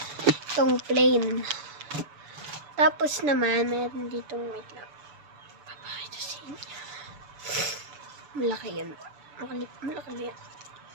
Itong plain. Tapos naman, meron ditong, wait lang, papakita sa inyo. Malaki yan. Malaki yan.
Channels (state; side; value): late; left; 6.9 ms